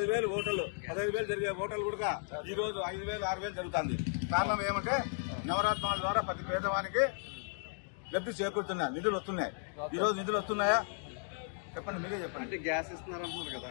జరిగే హోటల్ కూడా ఈ రోజు 5,000, 6,000 జరుగుతుంది. కారణం ఏమంటే నవరత్నాల ద్వారా ప్రతి పేదవానికి లబ్ధి చేకూరుతున్నాయి, నిధులు వస్తున్నాయి. ఈ రోజు నిధులు వస్తున్నాయా చెప్పండి, మీరే చెప్పండి. అంటే గ్యాస్ ఇస్తున్నారు అంటున్నారు కదా,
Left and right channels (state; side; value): silent; right; 54 dB below the other